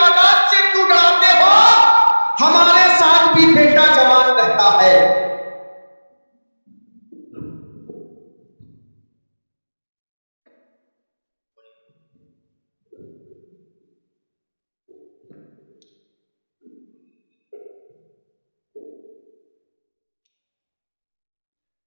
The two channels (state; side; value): inverted; both; correlation -1.00